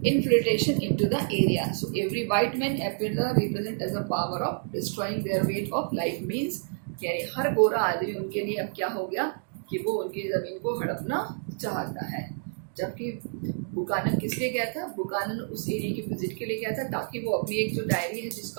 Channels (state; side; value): silent; left; digital silence